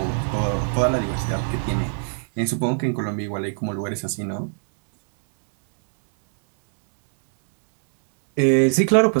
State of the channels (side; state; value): left; silent; digital silence